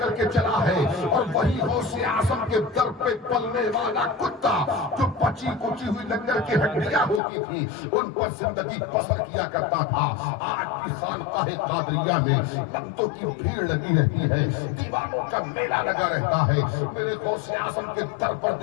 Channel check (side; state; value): right; drops out; at 7.2 s